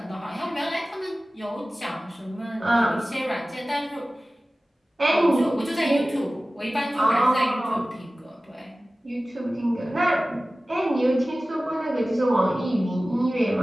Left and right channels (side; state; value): both; normal; correlation 0.97